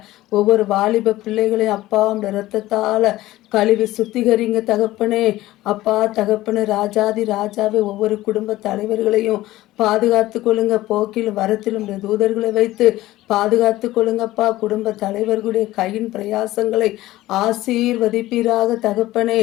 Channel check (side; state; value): right; quieter; 16.5 dB